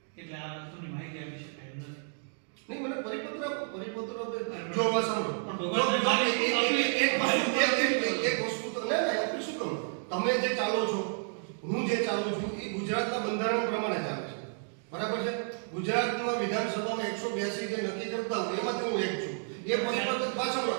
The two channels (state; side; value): silent; left; 57 dB below the other